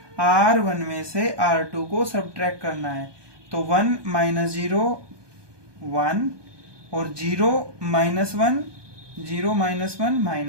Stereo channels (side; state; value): left; late; 1.2 ms